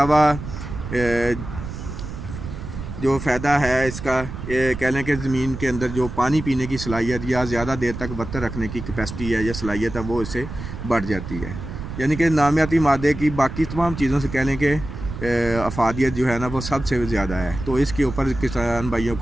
जो फ़ायदा है इसका, ये कह लें कि ज़मीन के अंदर जो पानी पीने की सलाहियत या ज़्यादा देर तक वक्त रखने की कैपेसिटी है या सलाहियत है वो इससे बढ़ जाती है। यानी कि नामियाती मादे की बाकी तमाम चीज़ों से कह लें कि अफादियत जो है ना वो सबसे ज़्यादा है। तो इसके ऊपर किसान भाइयों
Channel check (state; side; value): noise; right; rumble, 9 dB below the sound